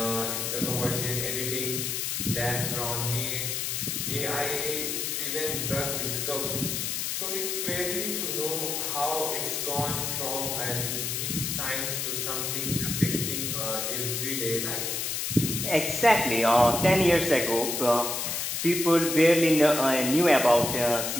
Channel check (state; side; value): noise; left; hiss, 1 dB below the sound